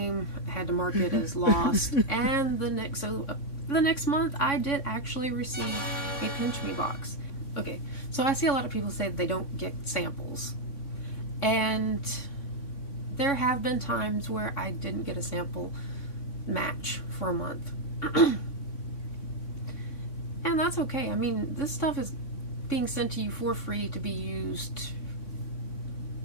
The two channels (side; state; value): right; late; 3.6 ms